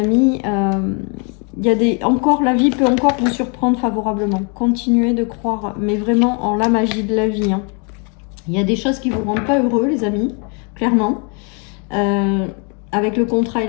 il y a la vie peut encore vous surprendre favorablement. Continuez de croire, mais vraiment en la magie de la vie, hein. Il y a des choses qui vous rendent pas heureux, les amis, clairement. Avec le contrat et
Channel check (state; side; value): quieter; right; 35.7 dB